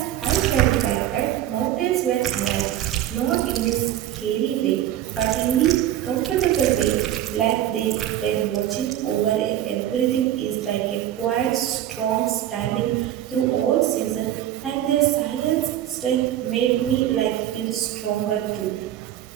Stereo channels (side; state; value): left; quieter; 12.2 dB